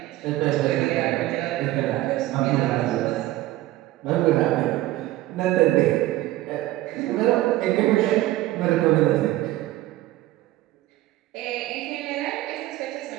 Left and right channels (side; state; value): left; quieter; 16.3 dB